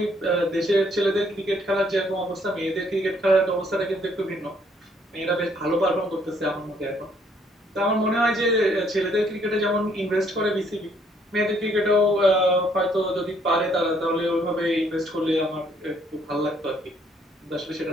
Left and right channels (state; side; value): normal; both; correlation 0.66